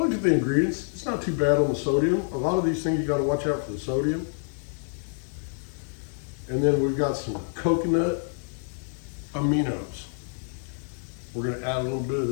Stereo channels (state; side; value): silent; right; 60 dB below the other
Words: at the ingredients, it's not too bad on the sodium. A lot of these things you got to watch out for the sodium. And then we've got some coconut aminos. We're going to add a little bit of